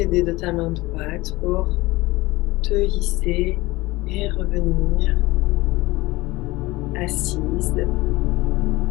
de ta main droite pour te hisser et revenir assise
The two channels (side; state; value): right; quieter; 20.4 dB